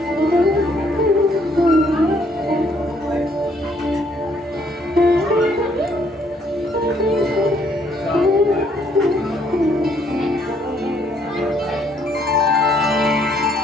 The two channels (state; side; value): normal; both; correlation 0.67